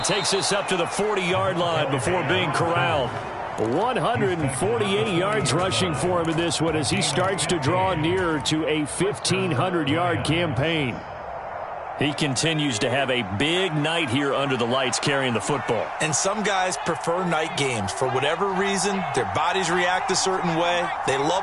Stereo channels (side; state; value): both; identical; correlation 1.00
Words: takes this up to the 40-yard line before being corralled. 148 yards rushing for him in this one as he starts to draw nearer to a 1,500-yard campaign. He continues to have a big night here under the lights carrying the football. And some guys prefer night games. For whatever reason, their bodies react a certain way. They